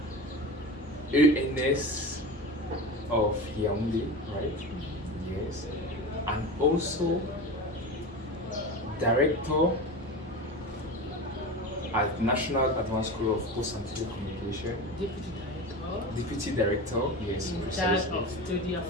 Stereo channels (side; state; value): both; normal; correlation 0.28